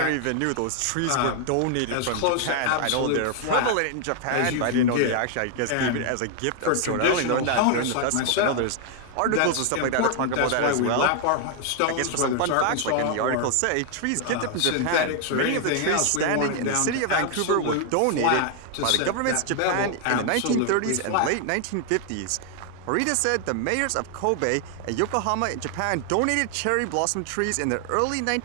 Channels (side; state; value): both; different; correlation 0.00